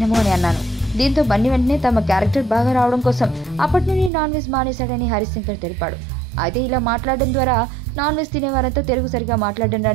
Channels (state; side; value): drops out; left; at 4.1 s